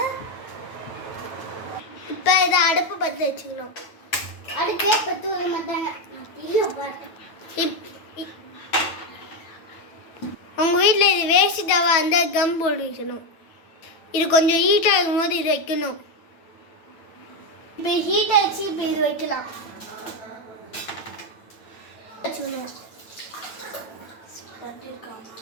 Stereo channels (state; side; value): late; right; 9.0 ms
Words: இப்போ இதை அடுப்பு பற்ற வச்சுக்கணும். அடுப்பே பற்ற வர மாட்டாங்க. உங்கள் வீட்டில் இது வேஸ்ட்டாக அந்த கம் போட்டு வைக்கணும். இது கொஞ்சம் ஹீட் ஆகும் போது இது வைக்கணும். இப்போ ஹீட் ஆகிடுச்சு. இப்போ இது வைக்கலாம்.